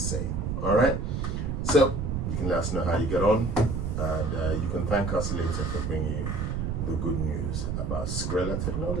All right. So you can let us know how you get on, and you can thank us later for bringing you the good news about Skrella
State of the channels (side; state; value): right; noise; rumble, 2 dB below the sound